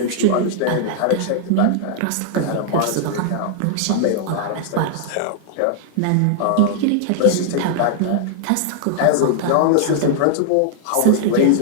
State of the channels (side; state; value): both; different; correlation -0.01